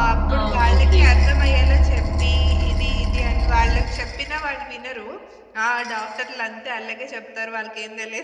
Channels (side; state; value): both; identical; correlation 1.00